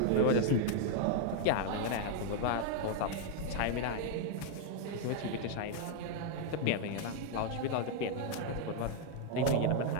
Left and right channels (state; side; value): different; both; correlation 0.00